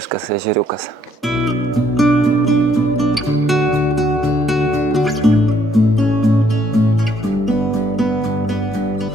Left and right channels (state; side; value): normal; both; correlation 0.67